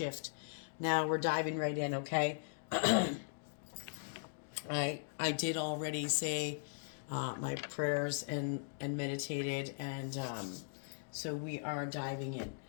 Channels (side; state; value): right; silent; digital silence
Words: Now we're diving right in, okay? I did already say my prayers and meditated, and so we are diving in.